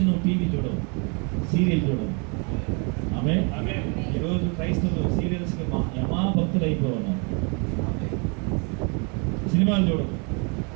నువ్వు టీవీ చూడవు, సీరియల్ చూడవు. ఆమె ఈరోజు క్రైస్తవులు సీరియల్స్కి యమా భక్తులు అయిపోతున్నారు. సినిమాలు చూడవు,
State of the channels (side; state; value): left; quieter; 34.4 dB